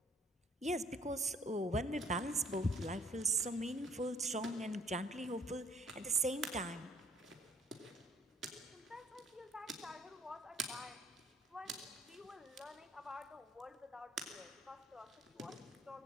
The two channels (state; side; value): normal; both; correlation 0.59